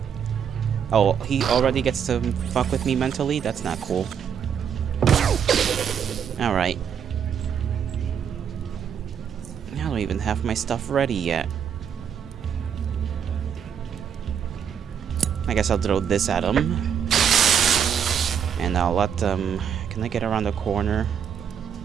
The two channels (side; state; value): left; quieter; 7.9 dB